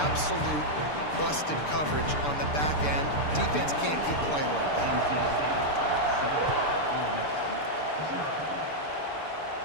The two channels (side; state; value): right; late; 6.8 ms